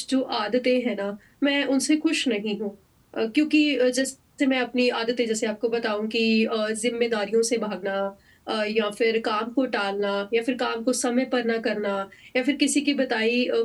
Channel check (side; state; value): both; identical; correlation 1.00